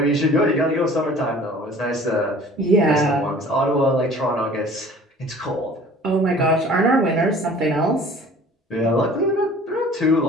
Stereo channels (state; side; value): normal; both; correlation 0.48